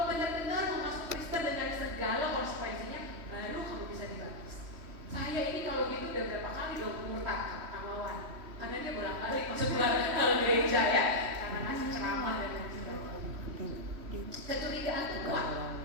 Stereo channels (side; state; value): left; late; 3.1 ms